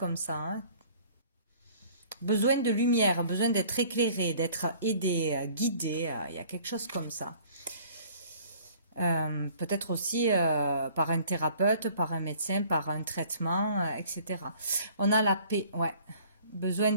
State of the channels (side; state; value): both; inverted; correlation -0.53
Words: ça. Hein. Besoin de lumière, besoin d'être éclairé, d'être aidé, guidé. Il y a quelque chose comme ça. Peut-être aussi par un thérapeute, par un médecin, par un traitement, etc. On a la paix, ouais. Besoin